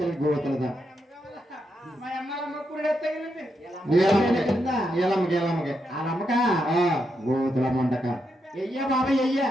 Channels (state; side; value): normal; both; correlation 0.82